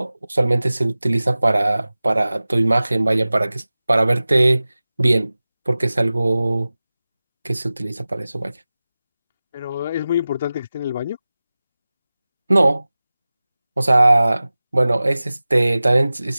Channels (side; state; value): both; inverted; correlation -0.97